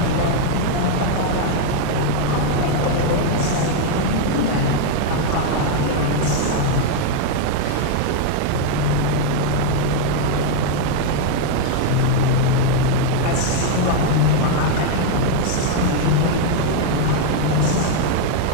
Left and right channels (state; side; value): different; both; correlation 0.00